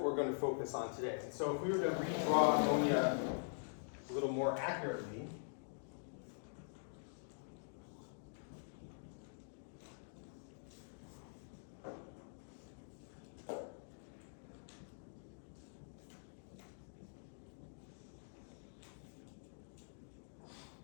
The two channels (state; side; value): silent; right; digital silence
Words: we're going to focus on today. So if we were to redraw ammonia a little more accurately,